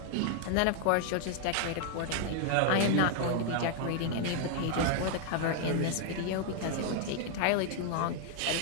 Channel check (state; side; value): different; both; correlation 0.00